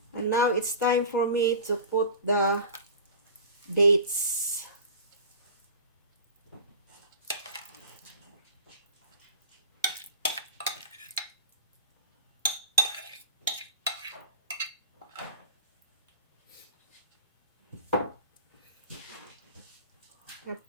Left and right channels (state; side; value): inverted; both; correlation -0.37